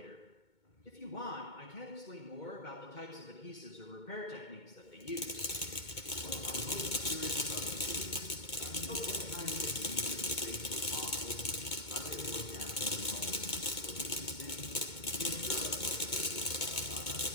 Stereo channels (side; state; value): right; late; 2.2 ms